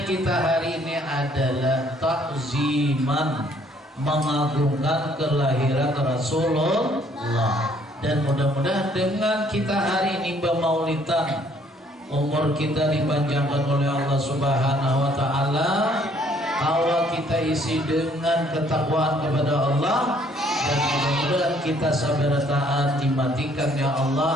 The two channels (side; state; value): both; normal; correlation 0.63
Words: kita hari ini adalah takziman, mengagungkan kelahiran Rasulullah. Dan mudah-mudahan dengan kita hari ini bermaulidan, umur kita dipanjangkan oleh Allah Subhanahu wa taala, awal kita isi dengan ketakwaan kepada Allah, dan mudah-mudahan kita sabar taat dimatikan ya